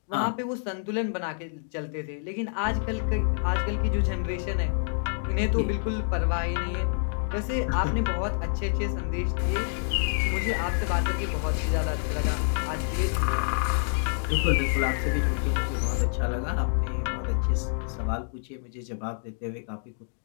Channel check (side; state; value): right; silent; digital silence